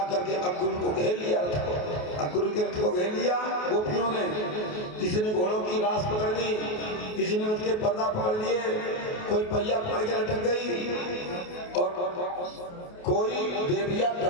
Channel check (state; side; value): late; right; 28 ms